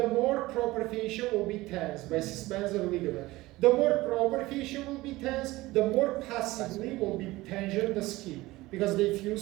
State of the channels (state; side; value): quieter; left; 19.1 dB